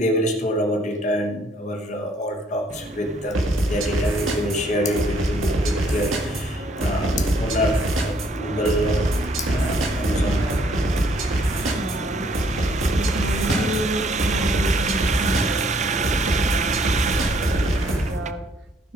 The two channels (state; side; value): normal; both; correlation 0.65